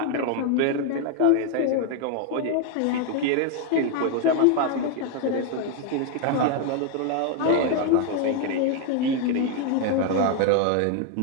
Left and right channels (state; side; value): different; both; correlation 0.01